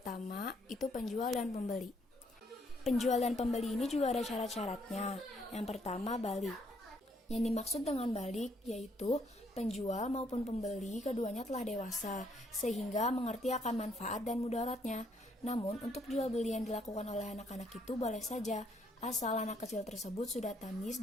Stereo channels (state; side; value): normal; both; correlation 0.69